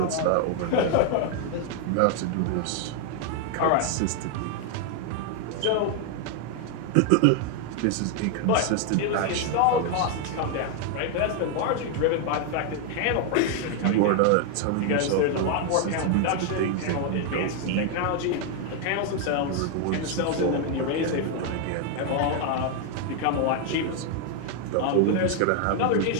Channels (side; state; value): both; different; correlation 0.00